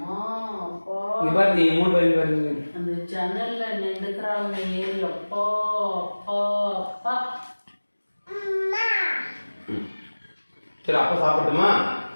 அப்பா. இது பாரு நீ 3 பேரும் பாருங்க. அந்த ஜன்னல்ல நின்றுக்கிறாங்க ஏறி. அப்பா அப்பா அப்பா. சரி அப்பா சாப்பிட்டுமா?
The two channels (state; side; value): inverted; both; correlation -1.00